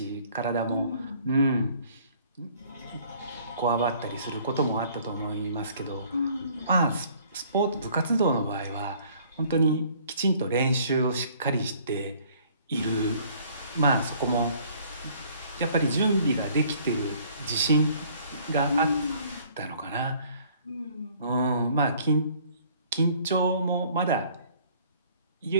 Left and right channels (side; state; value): both; inverted; correlation -0.57